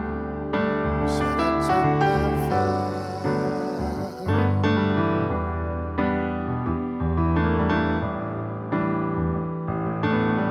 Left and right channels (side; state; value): both; identical; correlation 1.00